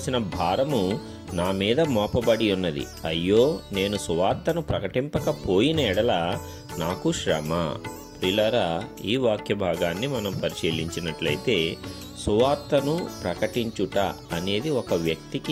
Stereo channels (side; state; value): both; identical; correlation 1.00